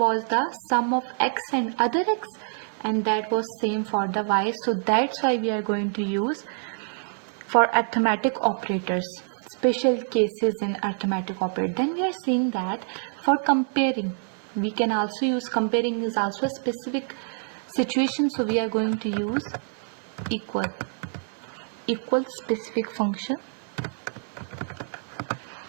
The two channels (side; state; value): left; silent; digital silence